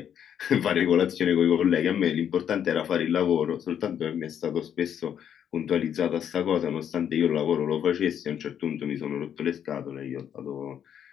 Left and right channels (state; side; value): quieter; right; 9.1 dB